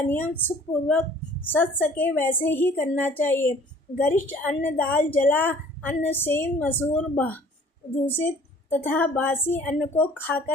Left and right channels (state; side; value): normal; both; correlation 0.53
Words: नियम सुखपूर्वक सध सके वैसे ही करना चाहिए। गरिष्ठ अन्न दाल जला अन्न सेम मसूर दूषित तथा बासी अन्न को